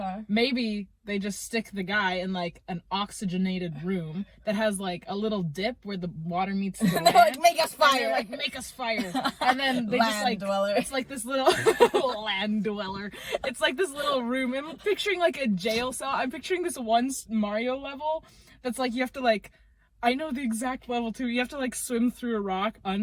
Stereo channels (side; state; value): both; identical; correlation 1.00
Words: Maybe they just stick the guy in, like, an oxygenated room that has, like, a little dip where the water meets the land. Like, make us fire! Like, make us fire. And then they land just, like, dweller. It's like this little land dweller. It's like this little room. I'm picturing, like, a jail cell. I'm picturing this one Mario level that's, like, you have to, like, I know the exact level, too. You have to, like, swim through a rock